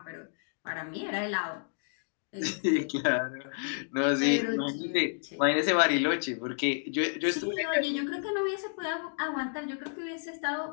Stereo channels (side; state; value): right; silent; digital silence